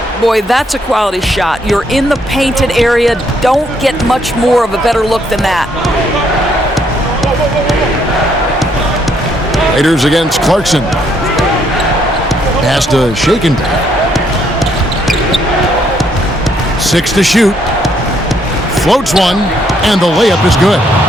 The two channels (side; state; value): both; normal; correlation 0.71